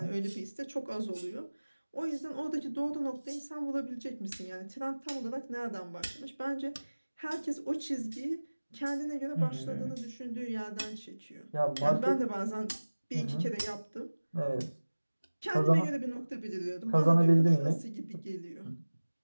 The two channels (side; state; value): both; inverted; correlation -1.00